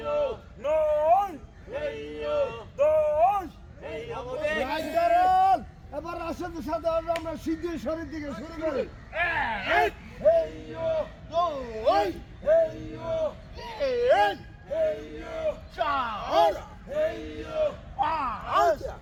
নয় 10। এবার রাশেদের সাথে আমরা সিদ্ধির শরীর দিকে শুরু করি। এক দুই তিন চার পাঁচ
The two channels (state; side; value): identical; both; correlation 1.00